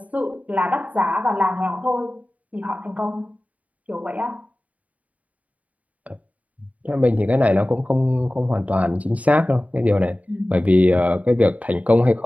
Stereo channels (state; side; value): late; left; 0.070 ms